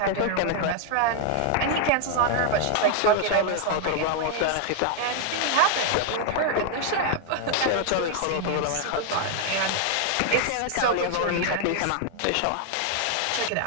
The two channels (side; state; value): both; different; correlation 0.00